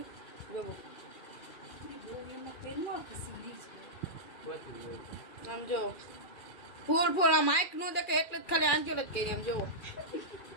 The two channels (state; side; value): late; right; 2.4 ms